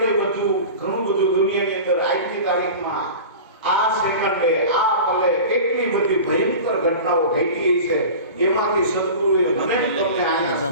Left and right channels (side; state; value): both; inverted; correlation -0.34